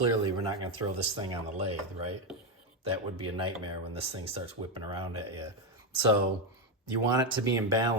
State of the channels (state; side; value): normal; both; correlation 0.08